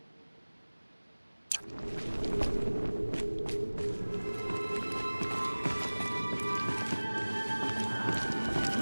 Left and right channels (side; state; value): both; inverted; correlation -1.00